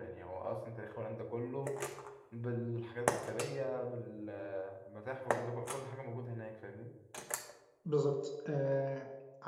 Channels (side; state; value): both; identical; correlation 1.00